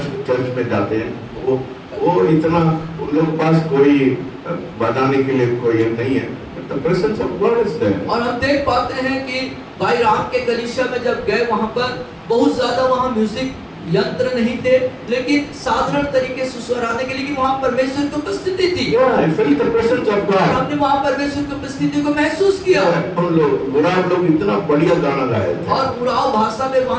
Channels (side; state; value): both; identical; correlation 1.00